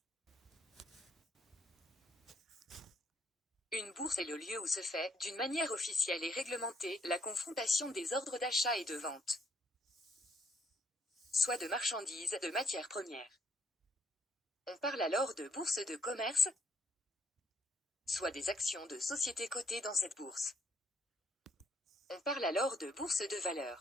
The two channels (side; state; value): both; normal; correlation 0.70